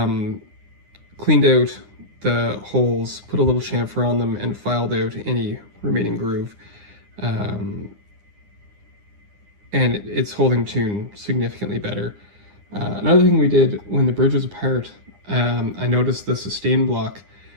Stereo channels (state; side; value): late; left; 9.8 ms